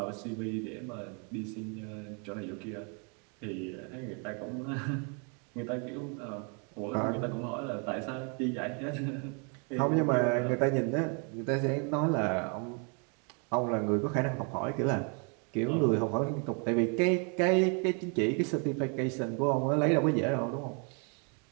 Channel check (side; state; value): left; quieter; 37.1 dB